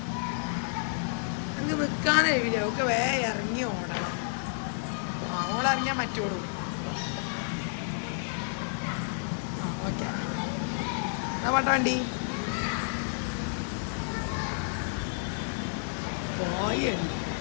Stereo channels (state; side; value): silent; right; 58 dB below the other